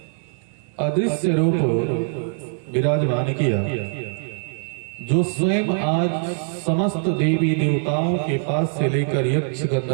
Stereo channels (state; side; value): silent; left; 64 dB below the other